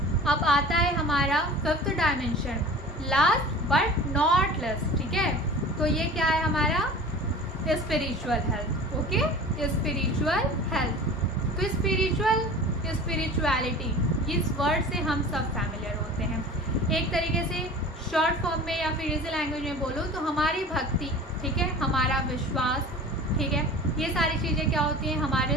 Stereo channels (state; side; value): normal; both; correlation 0.39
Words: अब आता है हमारा fifth dimension, last but not less, ठीक है। तो ये क्या है हमारा? Spiritual health. Okay, spiritual health. तो स्पिरिचुअलिटी, इस वर्ड से हम सब फैमिलियर होते हैं। एक तरीके से शॉर्ट फॉर्म में या फिर इसी लैंग्वेज में बोलो तो हमारी भक्ति, ठीक है, हमारा विश्वास, ठीक है, ये सारी चीज़ें क्या होती हैं? हमारे